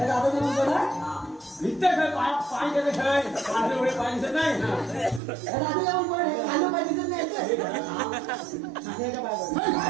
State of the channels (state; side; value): drops out; left; at 5.2 s